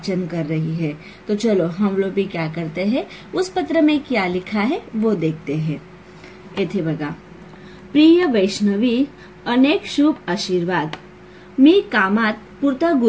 कर रही है। तो चलो हम लोग भी क्या करते हैं, उस पत्र में क्या लिखा है वो देखते हैं। येथे बघा, प्रिय वैष्णवी, अनेक शुभ आशीर्वाद। मी कामात पुरता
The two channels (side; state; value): both; identical; correlation 1.00